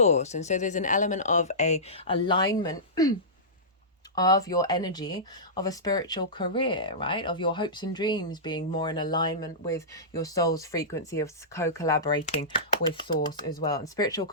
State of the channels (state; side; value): normal; both; correlation -0.18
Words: And so there's an element of a alignment of your energy of a spiritual career, right? Of your hopes and dreams being more in alignment with your soul's frequency of co-collaborating with Source as well. And spiritual